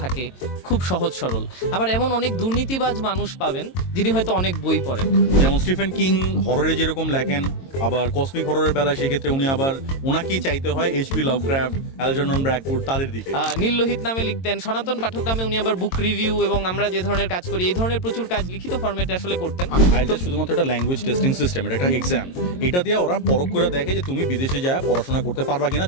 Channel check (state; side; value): late; right; 22 ms